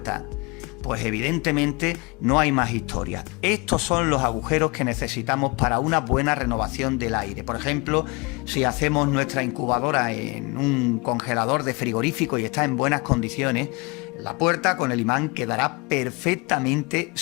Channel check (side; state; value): right; quieter; 27.7 dB